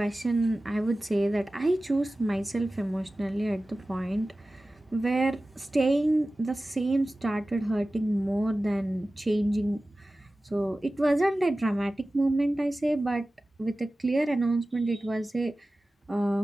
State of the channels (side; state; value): both; normal; correlation 0.96